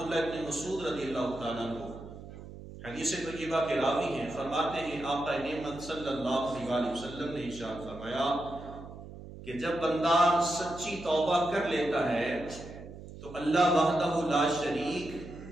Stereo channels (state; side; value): noise; right; hum, 14 dB below the sound